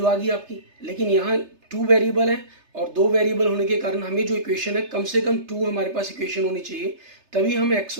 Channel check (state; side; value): late; left; 3.3 ms